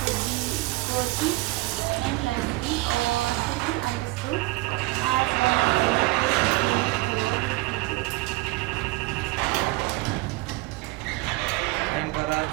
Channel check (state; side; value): quieter; left; 21.9 dB